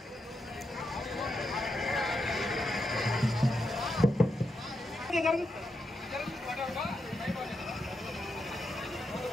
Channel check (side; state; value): both; normal; correlation 0.84